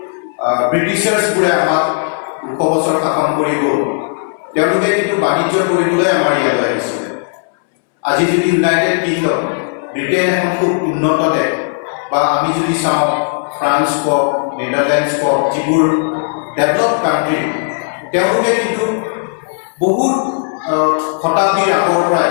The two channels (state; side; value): silent; right; 68 dB below the other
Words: ব্ৰিটিছাৰ্ছবোৰে আমাক 200 বছৰ শাসন কৰিব, তেওঁলোকে কিন্তু বাণিজ্য কৰিবলৈ আমাৰ ইয়ালৈ আহিছে। আজি যদি ইউনাইটেড কিংডম, ব্ৰিটেইন এখন খুব উন্নত দেশ, বা আমি যদি চাওঁ ফ্ৰান্স কওক, নেদাৰলেণ্ডছ কওক, যিবোৰ ডেভেলপ কাণ্ট্ৰি, তেওঁলোকে কিন্তু বহুত শতাব্দীৰ আগৰ পৰাই